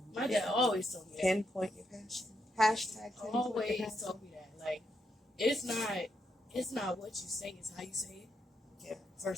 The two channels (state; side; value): normal; both; correlation 0.80